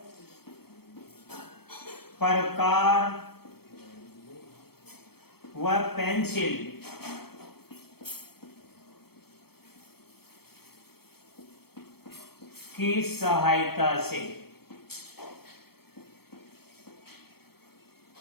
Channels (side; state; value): right; late; 0.96 ms